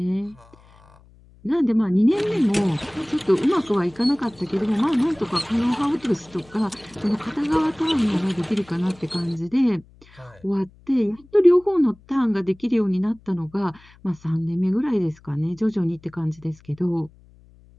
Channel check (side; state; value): left; noise; hum, 27 dB below the sound